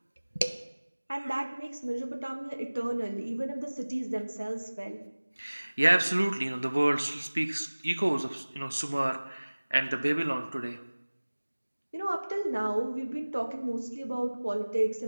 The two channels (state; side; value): inverted; both; correlation -1.00